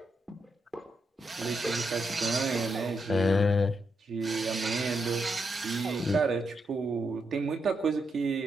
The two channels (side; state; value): both; normal; correlation 0.82